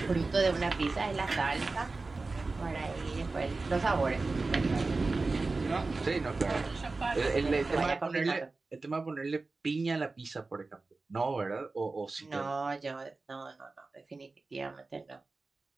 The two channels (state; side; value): quieter; left; 3.7 dB